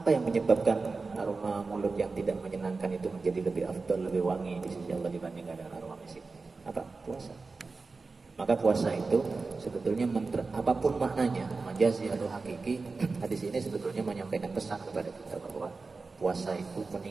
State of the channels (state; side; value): quieter; left; 4.1 dB